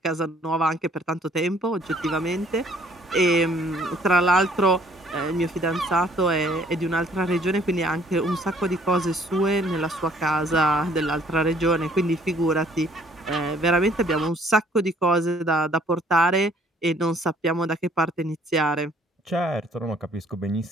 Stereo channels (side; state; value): both; normal; correlation 0.60